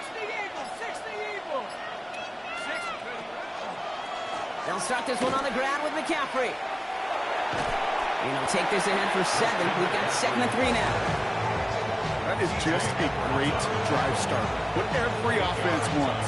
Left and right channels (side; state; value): both; identical; correlation 1.00